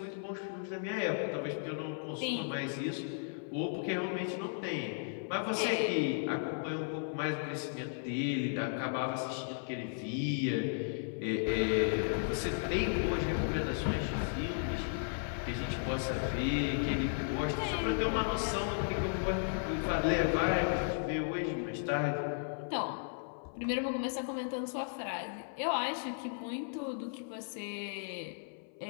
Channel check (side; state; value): right; silent; 54 dB below the other